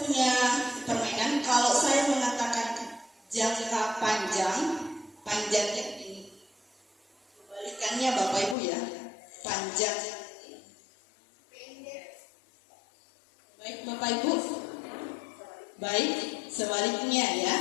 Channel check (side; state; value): right; drops out; at 8.6 s